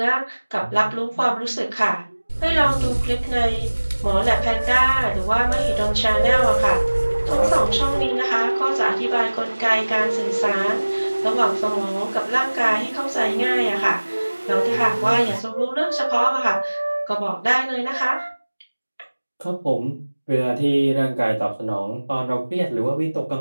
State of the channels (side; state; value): both; inverted; correlation -1.00